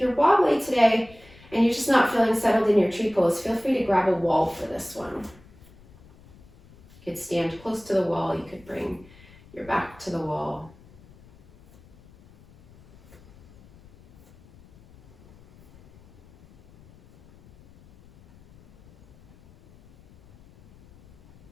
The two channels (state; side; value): noise; left; rumble, 25 dB below the sound